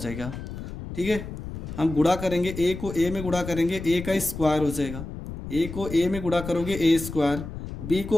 ठीक है। हम गुणा करेंगे, ए को ए में गुणा करेंगे, ए का स्क्वायर हो जाएगा। ए को ए में गुणा करोगे ए स्क्वायर, बी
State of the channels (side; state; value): left; noise; rumble, 9 dB below the sound